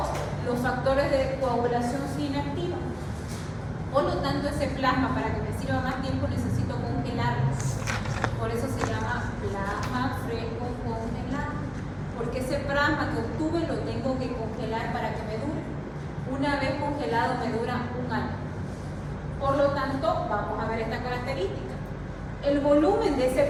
los factores de coagulación se inactivan. Por lo tanto, ese plasma, para que me sirva más tiempo, necesito congelarlo. Por eso se llama plasma fresco congelado. plasma que obtuve lo tengo que congelar para que me dure. Una vez congelado me dura un año. Por lo tanto, vamos a ver esta característica. El volumen de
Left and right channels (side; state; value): both; identical; correlation 1.00